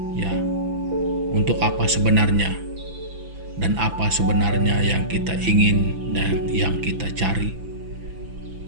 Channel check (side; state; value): left; late; 6.0 ms